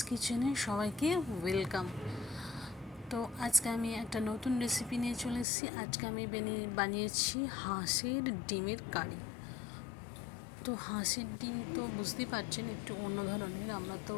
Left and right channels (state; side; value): drops out; right; at 5.5 s